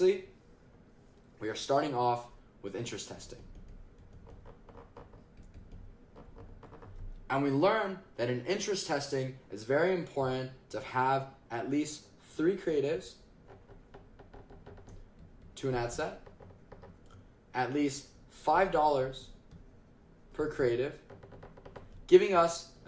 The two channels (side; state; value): both; identical; correlation 1.00